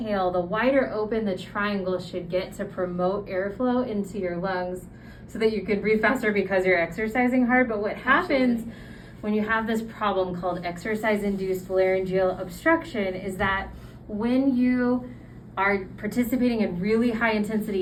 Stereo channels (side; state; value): both; identical; correlation 1.00